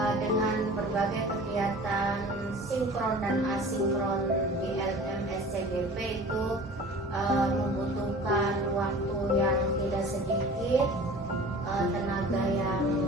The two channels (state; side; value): normal; both; correlation 0.42